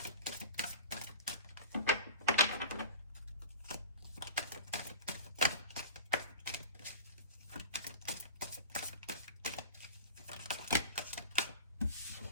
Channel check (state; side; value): inverted; both; correlation -0.35